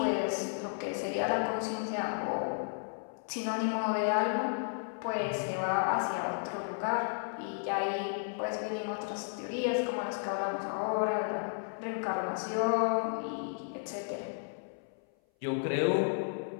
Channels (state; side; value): silent; right; 56 dB below the other